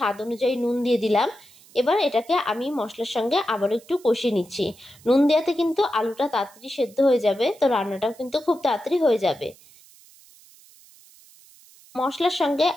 অনুযায়ী নুন দিয়ে দিলাম। এবার এটাকে আমি মশলার সঙ্গে আবার একটু কষিয়ে নিচ্ছি। নুন দেওয়াতে কিন্তু আলুটা তাড়াতাড়ি সেদ্ধ হয়ে যাবে, তো রান্নাটাও কিন্তু খুব তাড়াতাড়ি হয়ে যাবে। মশলার সঙ্গে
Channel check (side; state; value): right; noise; hiss, 25 dB below the sound